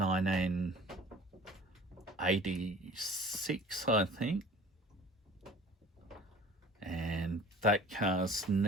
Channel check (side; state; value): both; normal; correlation 0.46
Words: I think. And that car's